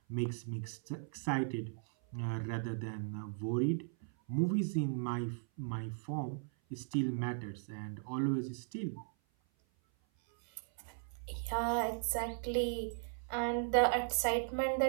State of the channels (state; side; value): silent; left; 53 dB below the other